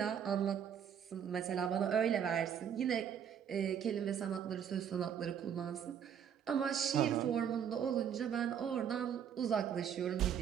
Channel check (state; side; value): quieter; left; 8.5 dB